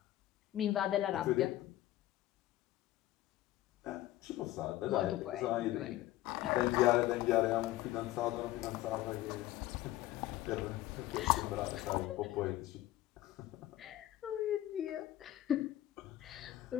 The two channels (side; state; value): right; quieter; 15.0 dB